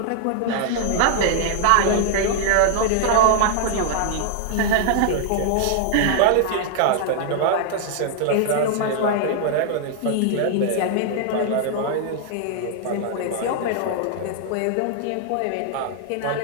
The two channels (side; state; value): both; different; correlation -0.01